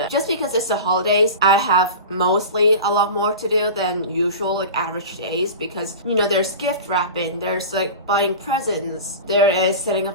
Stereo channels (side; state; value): both; inverted; correlation -0.32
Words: just because it's the holidays, I have mostly a lot more to do than usual, like average days, because there's gift wrapping, there's like buying presents, there is setting up